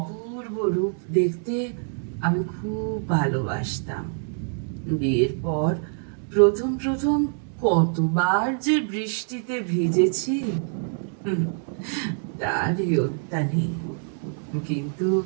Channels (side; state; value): left; silent; 61 dB below the other